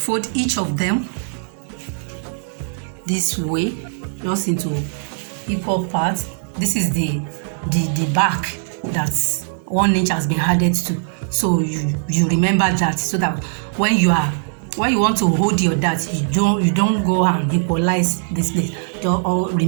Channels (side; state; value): left; silent; digital silence